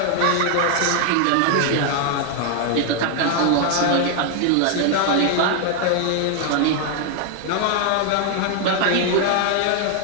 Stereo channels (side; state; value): both; different; correlation 0.00